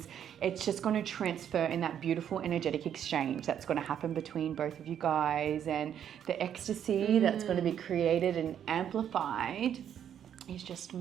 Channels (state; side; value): quieter; left; 9.4 dB